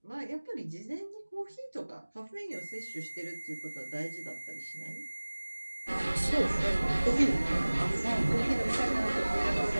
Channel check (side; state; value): both; inverted; correlation -1.00